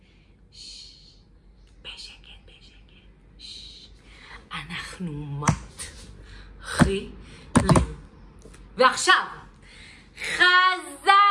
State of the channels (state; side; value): identical; both; correlation 1.00